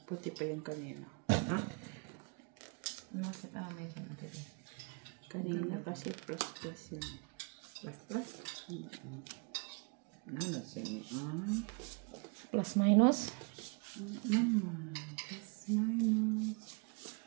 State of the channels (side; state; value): left; quieter; 35.2 dB